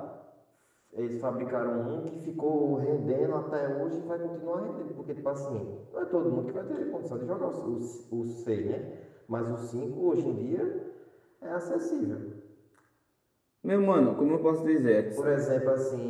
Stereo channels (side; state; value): both; identical; correlation 1.00